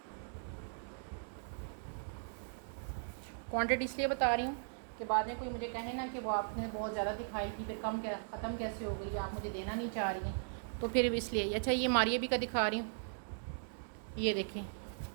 क्वांटिटी इसलिए बता रही हूँ कि बाद में कोई मुझे कहे ना कि वो आपने बहुत ज़्यादा दिखाई थी, फिर कम क्या ख़त्म कैसे हो गई, आप मुझे देना नहीं चाह रही हैं, तो फिर इसलिए। अच्छा ये मारिया भी का दिखा रही हूँ, ये देखिए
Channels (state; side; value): silent; left; digital silence